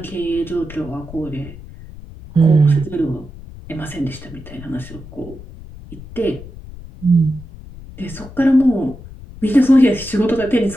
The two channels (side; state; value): left; noise; rumble, 16 dB below the sound